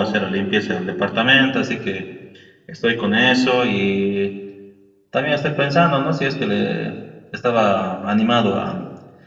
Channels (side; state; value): both; identical; correlation 1.00